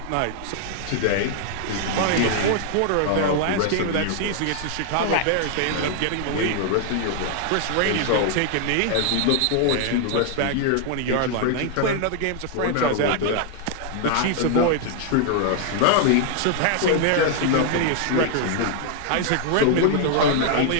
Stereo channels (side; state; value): both; different; correlation 0.00